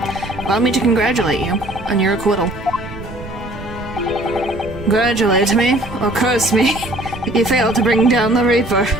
Allow me to congratulate you on your acquittal. Congratulate me, or curse me, if you fail to bring down the Reaper.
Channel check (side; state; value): right; noise; rumble, 13 dB below the sound